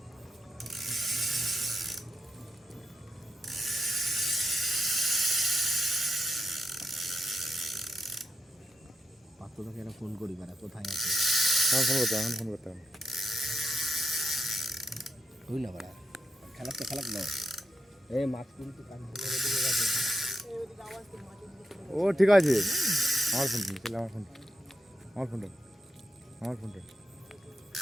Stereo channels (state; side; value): normal; both; correlation 0.85